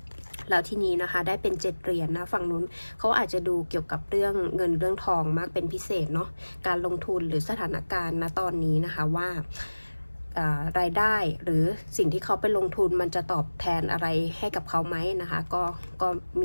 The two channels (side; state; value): both; inverted; correlation -1.00